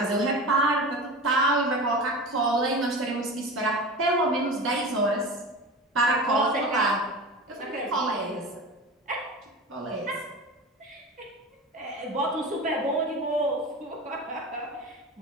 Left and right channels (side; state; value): both; normal; correlation 0.30